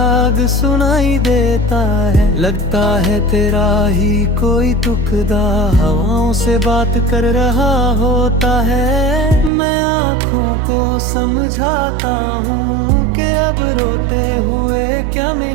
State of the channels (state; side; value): drops out; left; at 9.5 s